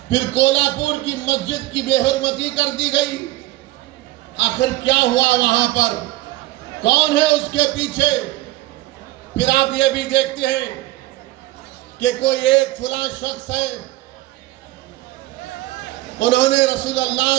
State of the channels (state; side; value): quieter; left; 17.7 dB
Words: फिर कोल्हापुर की मस्जिद की बेहरमती कर दी गई। आखिर क्या हुआ वहां पर? कौन है उसके पीछे? फिर आप ये भी देखते हैं कि कोई एक फुला शख्स है, उन्होंने रसूलुल्लाह